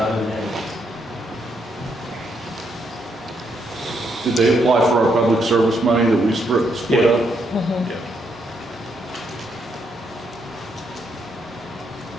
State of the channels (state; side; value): normal; both; correlation 0.76